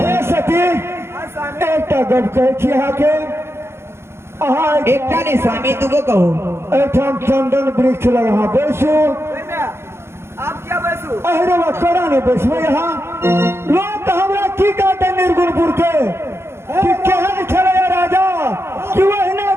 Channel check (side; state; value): left; late; 0.12 ms